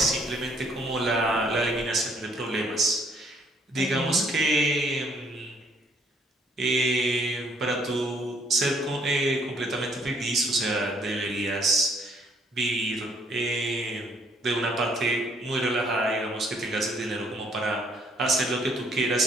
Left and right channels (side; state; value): both; normal; correlation 0.65